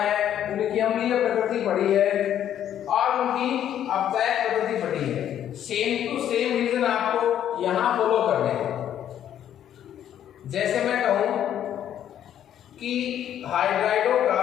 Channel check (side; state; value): right; quieter; 10.5 dB